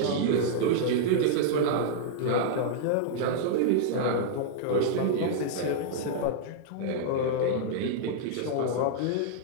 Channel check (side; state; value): both; different; correlation -0.02